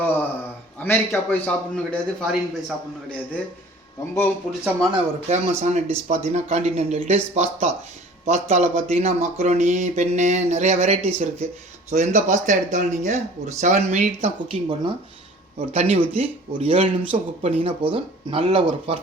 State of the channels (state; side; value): normal; both; correlation 0.47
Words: அமெரிக்கா போய் சாப்பிட்ணும் கிடையாது, ஃபாரின் போய் சாப்பிட்ணும் கிடையாது. ரொம்பவும் பிடிச்சமான ஒரு ஃபேமஸான டிஷ் பார்த்தீங்கன்னா காண்டினென்டல் டிஷ் பாஸ்தாவில் பார்த்தீங்கன்னா மக்ரோனி, பென்னு, நிறைய வெரைட்டிஸ் இருக்குது. ஸோ எந்த பாஸ்தா எடுத்தாலும் நீங்கள் ஒரு 7 மினிட் தான் குக்கிங் பண்ணணும். ஒரு தண்ணி ஊற்றி ஒரு 7 நிமிஷம் குக் பண்ணிங்கன்னா போதும், நல்ல ஒரு